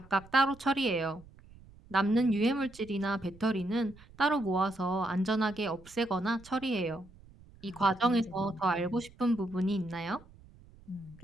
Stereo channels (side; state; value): right; noise; rumble, 23 dB below the sound